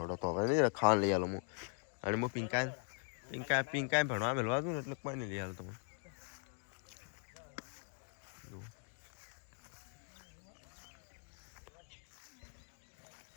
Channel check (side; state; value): right; silent; 51 dB below the other